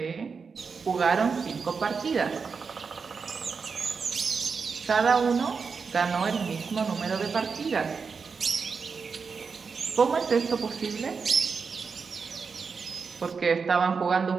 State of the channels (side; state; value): left; quieter; 5.3 dB